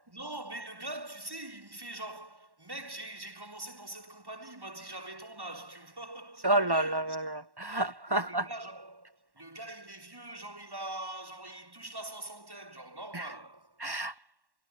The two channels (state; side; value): late; left; 1.1 ms